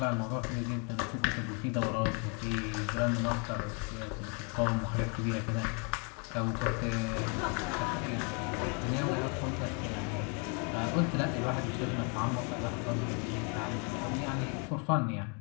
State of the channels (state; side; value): quieter; right; 35.8 dB